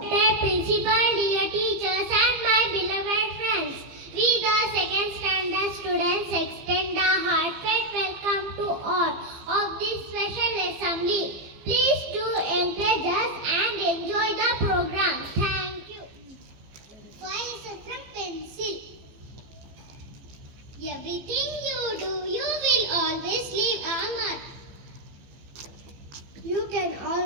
principal, dear teachers, and my beloved friends, we the second standard students extend a heartfelt welcome to all of this special assembly. Please do encourage us and enjoy the program. Thank you. Why is it from pencil? Everything you do, you will always leave a mark. You can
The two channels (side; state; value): left; late; 15 ms